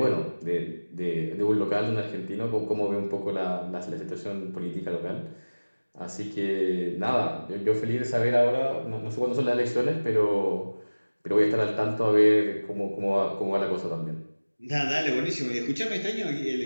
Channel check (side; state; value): both; inverted; correlation -1.00